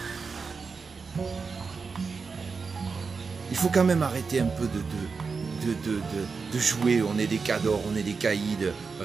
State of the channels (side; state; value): left; quieter; 4.9 dB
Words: Il faut quand même arrêter un peu de jouer, on est des cadors, on est des caïds,